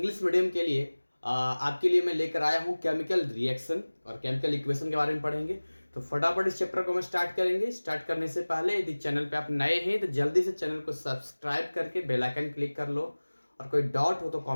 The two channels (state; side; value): inverted; both; correlation -1.00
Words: मीडियम के लिए आपके लिए मैं लेकर आया हूँ केमिकल रिएक्शन और केमिकल इक्वेशन के बारे में पढ़ेंगे। तो फटाफट इस चैप्टर को हम स्टार्ट करेंगे। स्टार्ट करने से पहले यदि चैनल पे आप नए हैं तो जल्दी से चैनल को सब्सक्राइब करके बेल आइकन क्लिक कर लो, और कोई डाउट हो तो